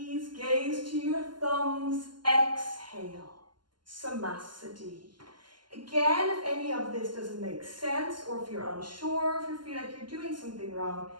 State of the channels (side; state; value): left; late; 0.71 ms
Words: gaze to your thumbs. Exhale, samasthiti. Again, if any of this doesn't make sense, or if you're unsure, if you feel like you're doing something wrong,